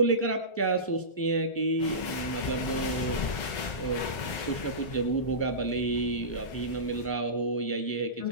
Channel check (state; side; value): late; right; 2.0 ms